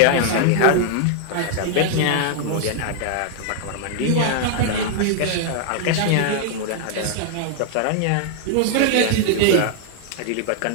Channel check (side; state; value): both; different; correlation 0.00